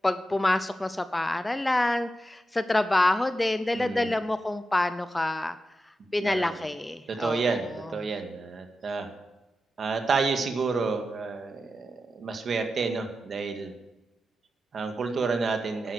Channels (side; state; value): both; normal; correlation 0.90